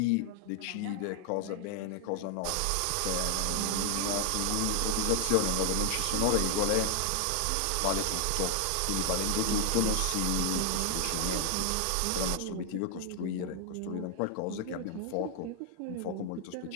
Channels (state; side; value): different; both; correlation 0.00